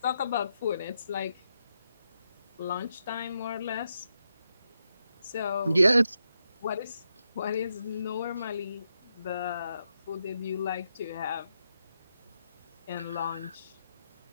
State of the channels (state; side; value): inverted; both; correlation -0.83